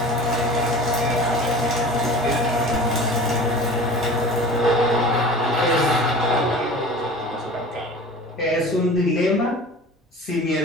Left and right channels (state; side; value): normal; both; correlation 0.39